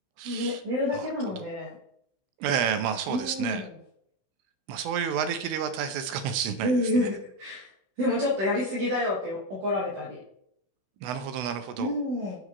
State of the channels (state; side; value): late; left; 16 ms